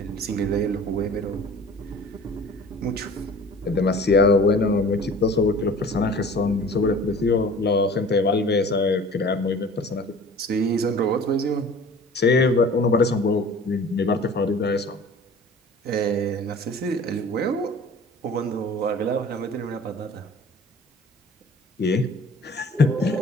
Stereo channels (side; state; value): both; normal; correlation 0.45